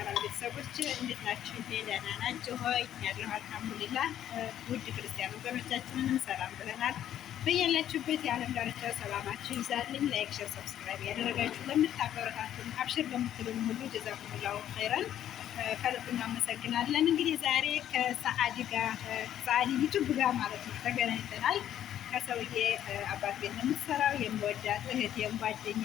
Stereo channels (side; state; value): right; quieter; 11.0 dB